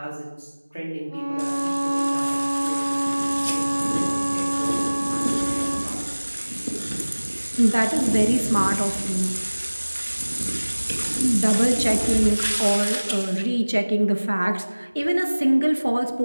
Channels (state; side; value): inverted; both; correlation -1.00